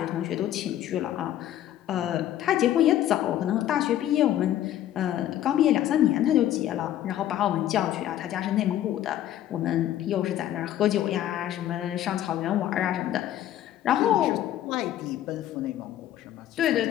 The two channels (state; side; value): quieter; right; 12.1 dB